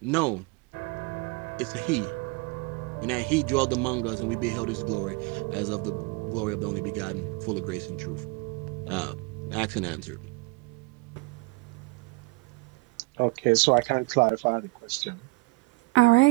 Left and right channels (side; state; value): left; quieter; 25.8 dB